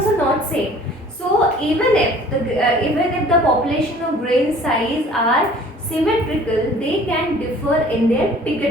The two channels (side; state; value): both; normal; correlation 0.50